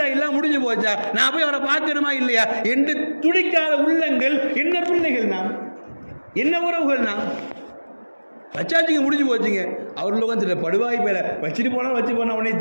எல்லாம் முடிஞ்சு போச்சா, நான் போய் அவரை பார்க்கணுமா இல்லையா என்று துடிக்காத உள்ளங்கள் என்ன பிள்ளைகள், நாம் என்ன உறவுகள், நாம் வச்சாச்சுங்க, முடிஞ்சு போச்சுங்க. அவர்கள் உட்காந்து படுவாய் பேர வச்சுட்டு போனால் வச்சு போனால் உடனே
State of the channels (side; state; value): both; inverted; correlation -1.00